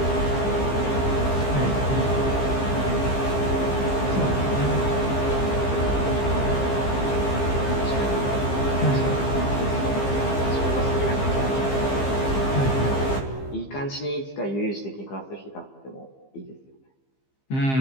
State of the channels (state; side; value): late; right; 15 ms